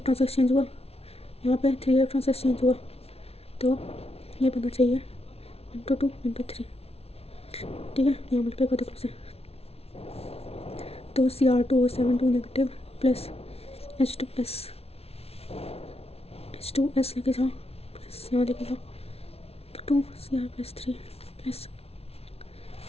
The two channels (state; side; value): late; right; 0.30 ms